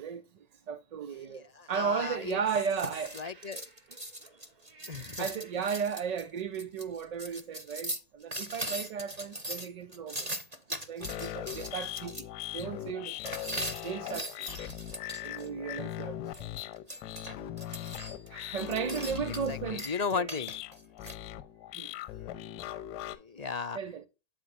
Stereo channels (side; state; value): left; late; 1.8 ms